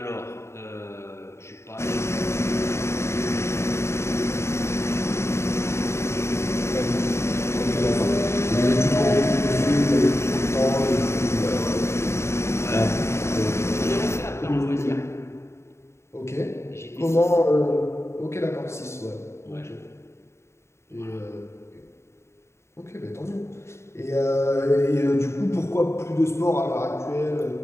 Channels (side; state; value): right; late; 0.13 ms